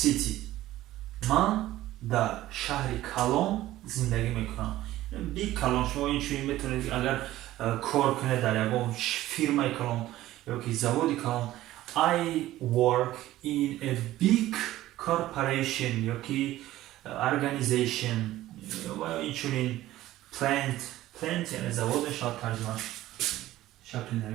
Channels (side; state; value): left; quieter; 15.2 dB